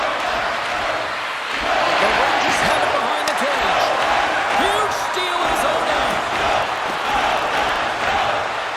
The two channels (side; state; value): both; identical; correlation 1.00